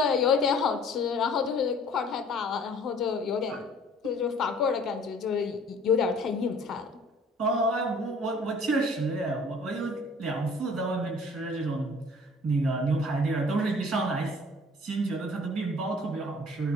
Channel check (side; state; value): both; normal; correlation 0.52